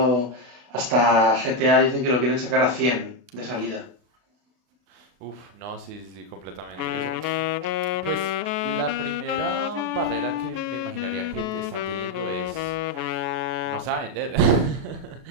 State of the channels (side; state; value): left; late; 32 ms